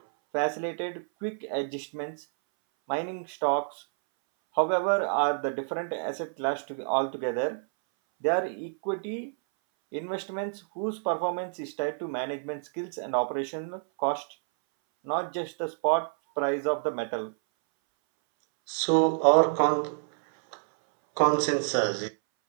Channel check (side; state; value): left; silent; 59 dB below the other